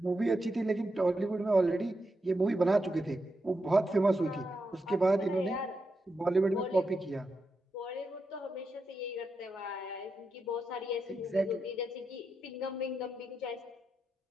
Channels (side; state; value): both; normal; correlation 0.86